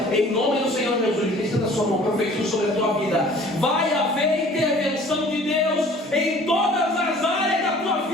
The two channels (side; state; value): both; normal; correlation 0.50